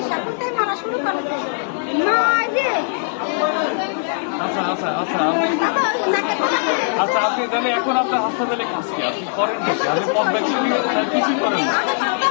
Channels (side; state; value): right; silent; 64 dB below the other